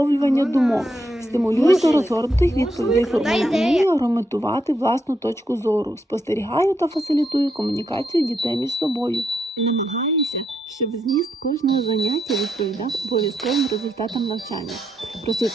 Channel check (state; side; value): normal; both; correlation 0.79